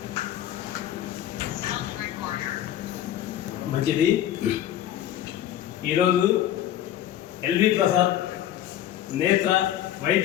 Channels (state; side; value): quieter; right; 11.7 dB